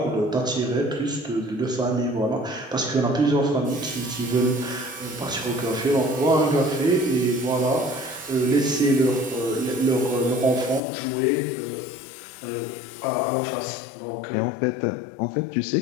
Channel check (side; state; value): right; drops out; at 10.8 s